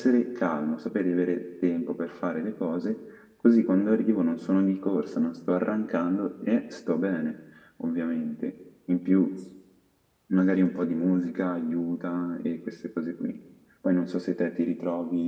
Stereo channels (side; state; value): both; identical; correlation 1.00